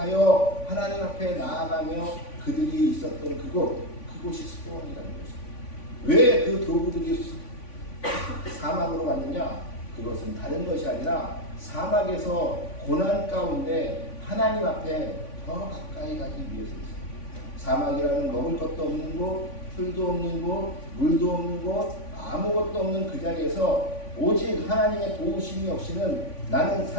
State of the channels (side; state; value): right; late; 3.5 ms